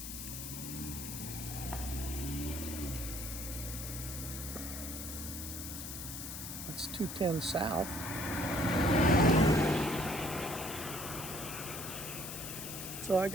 It's 210 south. So I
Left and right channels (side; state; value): left; noise; hiss, 7 dB below the sound